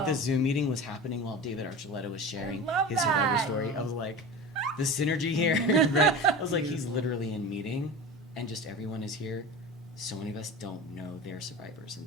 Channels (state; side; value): normal; both; correlation 0.31